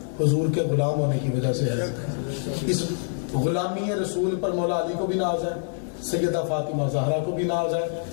حضور کے غلام ہونے کی وجہ سے ہے۔ اس غلامی رسول پر مولا علی کو بھی ناز ہے، سیدہ فاطمہ زہرا کو بھی ناز ہے،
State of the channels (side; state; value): right; silent; digital silence